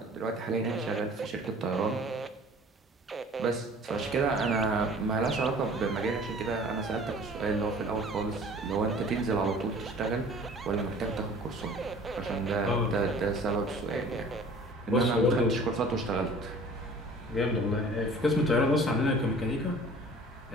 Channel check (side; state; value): both; normal; correlation 0.48